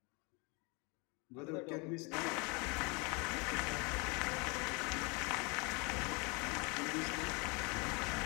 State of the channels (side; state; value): right; quieter; 30.0 dB